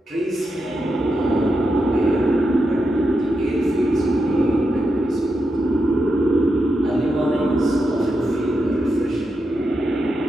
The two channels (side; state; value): both; normal; correlation 0.86